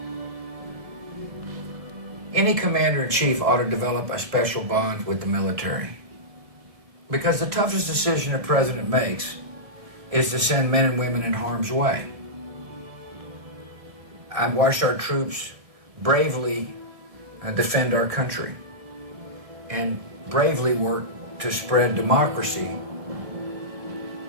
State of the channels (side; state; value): left; late; 1.7 ms